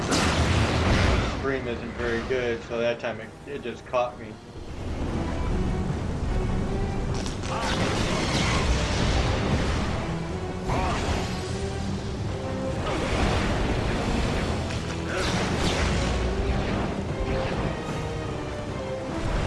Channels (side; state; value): both; identical; correlation 1.00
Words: stream isn't very good, so that time it just caught me.